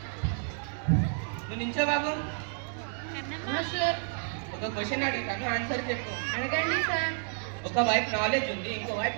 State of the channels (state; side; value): silent; left; 57 dB below the other